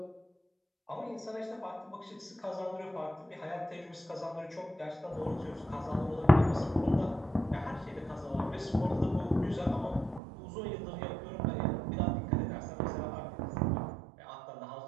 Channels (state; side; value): drops out; left; at 10.2 s